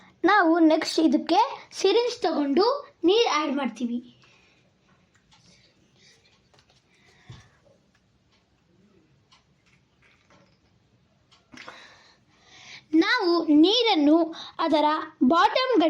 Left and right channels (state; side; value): identical; both; correlation 1.00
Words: ನಾವು ನೆಕ್ಸ್ಟ್ ಇದಕ್ಕೆ ಸಿರಿಂಜ್ ತಗೊಂಡು ನೀರು ಆ್ಯಡ್ ಮಾಡ್ತೀವಿ. ನಾವು ನೀರನ್ನು ಅದರ ಬಾಟಮ್